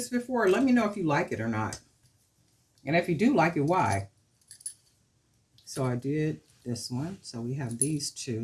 before, let me know if you like it or not. And if you do like it, why? So I did this one. So we have these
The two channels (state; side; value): identical; both; correlation 1.00